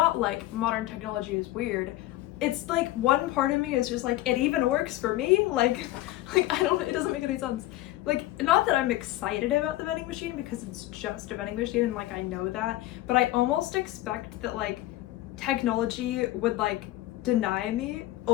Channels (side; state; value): right; quieter; 16.2 dB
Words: like modern technology is weird. It's like one part of me is just like, it even works for me. Like I don't, it doesn't make any sense. Like, not that I'm excited about the vending machine because it's just a vending machine and like I know that, but I almost expect that like technology would like deny me